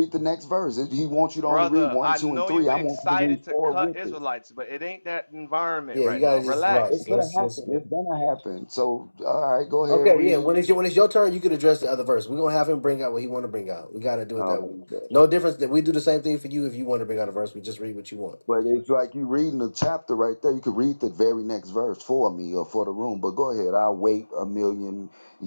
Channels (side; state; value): both; inverted; correlation -1.00